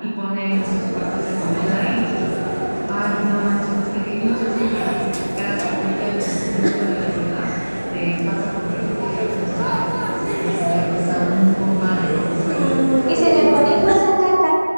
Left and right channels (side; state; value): both; inverted; correlation -1.00